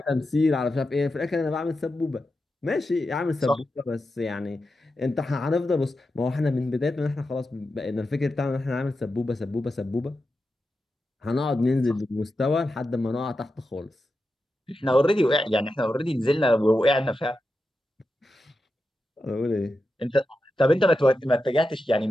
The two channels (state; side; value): normal; both; correlation 0.90